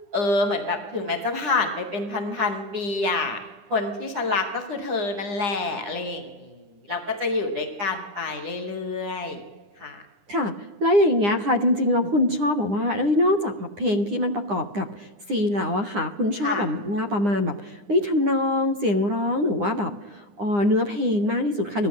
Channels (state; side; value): late; left; 9.9 ms